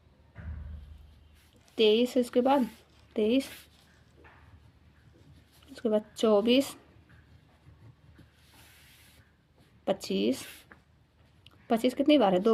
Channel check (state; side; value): identical; both; correlation 1.00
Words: 23 है। उसके बाद 23, उसके बाद 24, 25, 25 कितनी बार है? 2